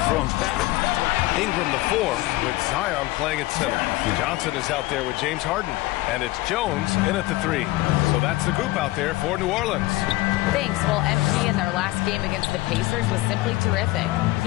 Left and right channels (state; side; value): quieter; right; 18.9 dB